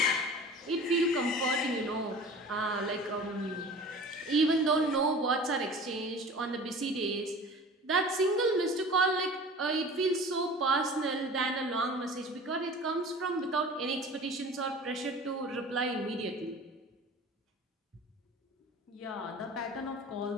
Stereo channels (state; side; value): normal; both; correlation 0.41